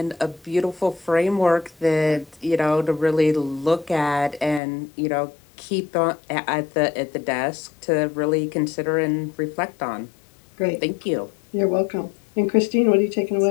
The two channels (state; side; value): drops out; right; at 4.6 s